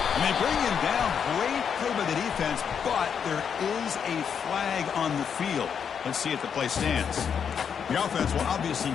And they bring him down. Great play by the defense, but there is a flag on the field. Let's see if the play stands. The offense will obviously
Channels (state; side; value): quieter; right; 7.3 dB